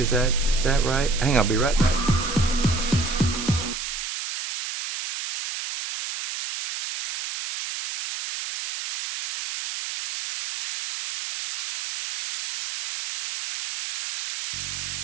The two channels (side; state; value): right; noise; hiss, 6 dB below the sound